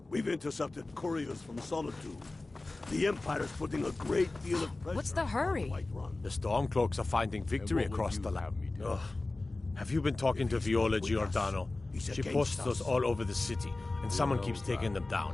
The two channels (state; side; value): quieter; right; 3.1 dB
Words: We've intercepted couriers from Solitude. The Empire's putting a great deal of pressure. What's the hurry? The Stormcloaks are finding victory across the land. Ugh. Have you been talking to Viola Giordano? She posts those all over the city, and someone keeps taking them